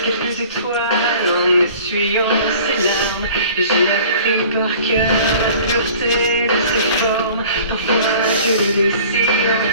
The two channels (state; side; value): inverted; both; correlation -0.47